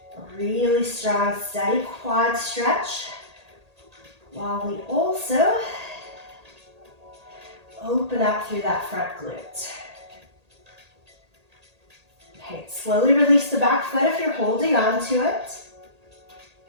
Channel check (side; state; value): left; late; 1.8 ms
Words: a really strong, steady quad stretch, while we also open up through that front glute. Okay, slowly release the back foot if you're holding on to it.